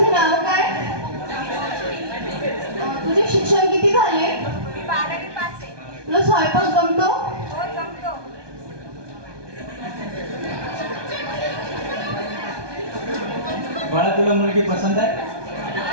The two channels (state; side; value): late; left; 1.2 ms